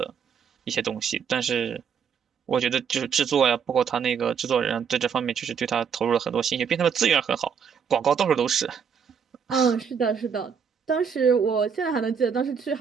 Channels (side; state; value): left; quieter; 6.9 dB